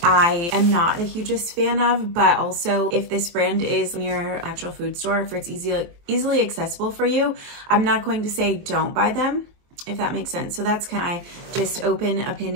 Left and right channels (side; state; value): left; late; 23 ms